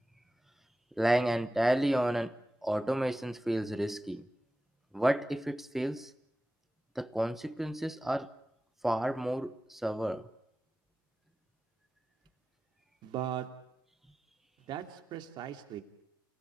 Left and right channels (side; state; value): both; normal; correlation 0.95